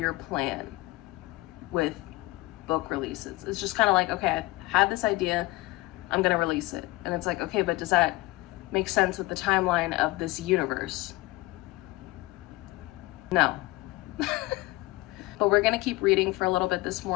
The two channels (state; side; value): quieter; right; 20.4 dB